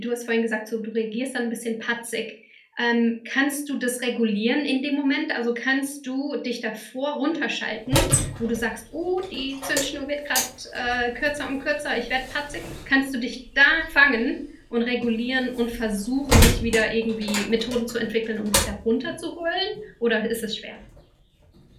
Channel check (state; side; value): identical; both; correlation 1.00